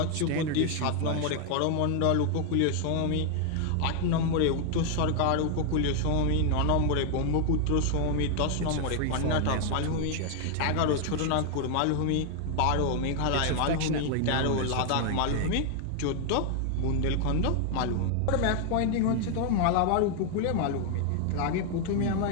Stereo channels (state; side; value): different; both; correlation 0.00